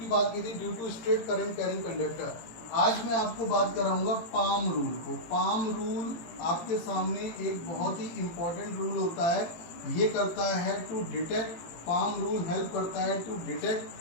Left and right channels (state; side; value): late; right; 18 ms